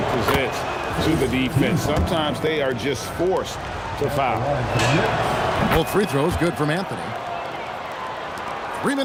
presents to the defense. Sometimes they are just forced to foul. Both free throws good from Anthony. 3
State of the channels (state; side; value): identical; both; correlation 1.00